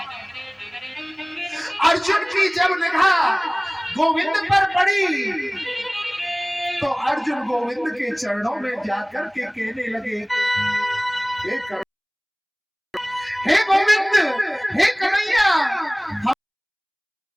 अर्जुन की जब निगाह गोविंद पर पड़ी तो अर्जुन गोविंद के चरणों में जाकर के कहने लगे, हे गोविंद, हे कन्हैया,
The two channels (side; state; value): both; identical; correlation 1.00